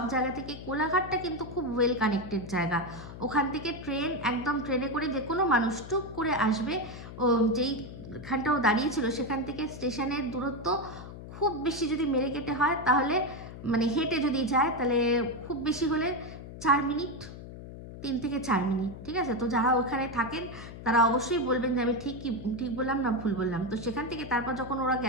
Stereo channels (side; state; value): left; noise; hum, 12 dB below the sound